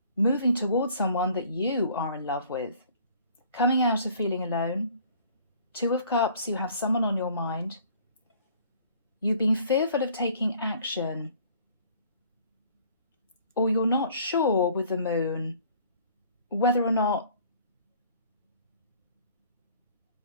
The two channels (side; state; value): both; inverted; correlation -0.54